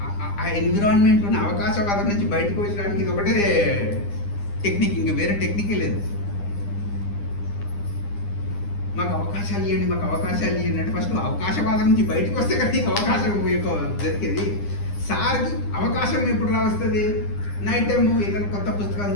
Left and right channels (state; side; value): late; right; 9.9 ms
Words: ఆ ఎన్విరాన్మెంట్ ఉన్న అవకాశవాదం నుంచి బయటకు వచ్చడానికి ఇది ఒకటే టెక్నిక్, ఇంకా వేరే టెక్నికే లేదు. మాకు అవకాశాలు ఇవ్వండి, మాకు అవకాశాలు ఇవ్వండి అంటే ఫస్ట్ అవకాశవాదం నుంచి బయటకు వస్తే కదా నీకు అవకాశం దొరికేది. సార్కి అవకాశం ఎప్పుడు రావస్తుంది? నైట్ టైము ఏదైనా కొత్త పుస్తకాలు